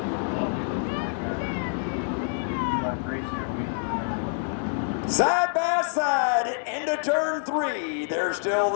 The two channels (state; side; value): silent; right; digital silence